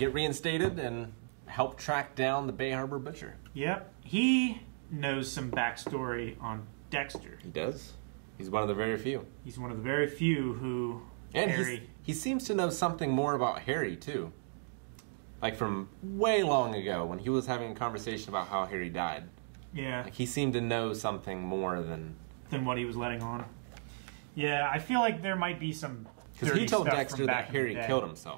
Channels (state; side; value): silent; left; digital silence